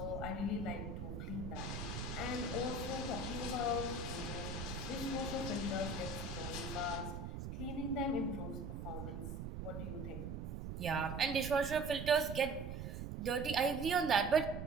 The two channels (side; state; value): right; noise; rumble, 6 dB below the sound